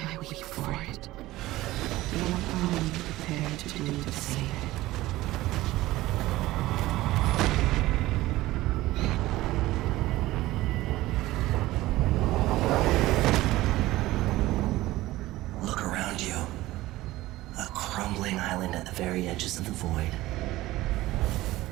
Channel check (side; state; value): left; quieter; 17.3 dB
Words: weep for it. What are you prepared to do to save it? Look around you. A crumbling island at the very edges of the void.